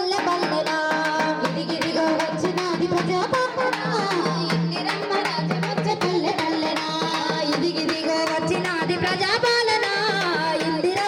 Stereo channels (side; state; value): both; identical; correlation 1.00